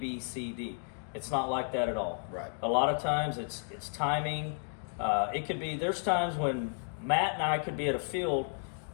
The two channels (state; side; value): silent; right; 56 dB below the other